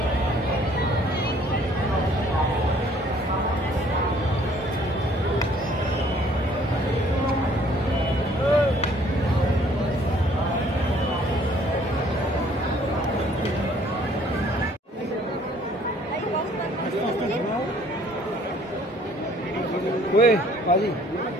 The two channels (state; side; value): normal; both; correlation 0.59